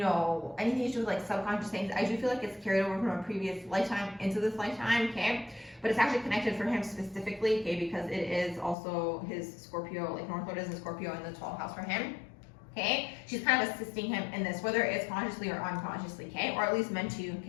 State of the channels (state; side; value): drops out; right; at 8.8 s